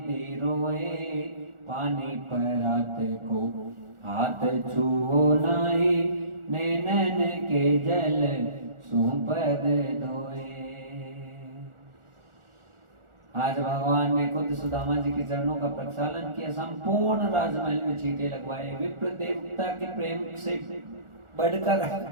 रोए। पानी परात को हाथ छुओ नाही नैनन के जल सुपद धोए। आज भगवान ने खुद सुदामा जी के चरणों का प्रक्षालन किया, संपूर्ण राजमहल में चींटे लगवाए। विप्र देवता के प्रेम से बढ़कर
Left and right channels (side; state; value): left; late; 1.4 ms